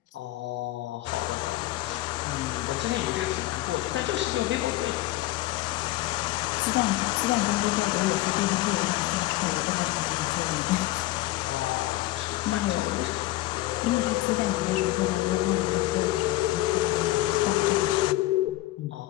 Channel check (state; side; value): quieter; right; 17.0 dB